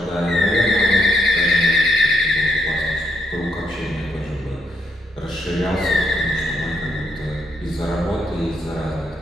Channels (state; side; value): normal; both; correlation 0.77